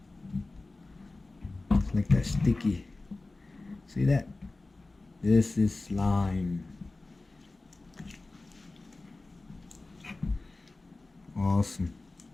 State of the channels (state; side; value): quieter; right; 3.2 dB